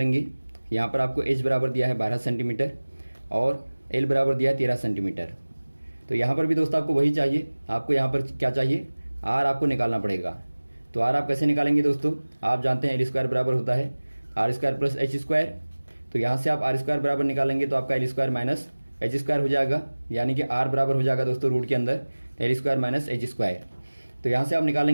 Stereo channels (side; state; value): both; inverted; correlation -1.00